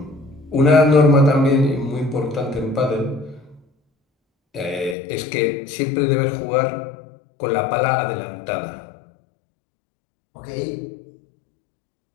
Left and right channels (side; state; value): right; drops out; at 5.0 s